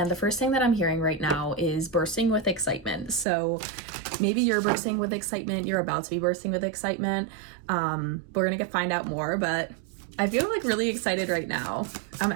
the first thing that I'm hearing right now is bursting with excitement. So maybe you're bursting with excitement, you're about to be bursting with excitement. We're gonna find out more, but I feel like really excited right now. I'm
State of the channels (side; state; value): left; drops out; at 3.2 s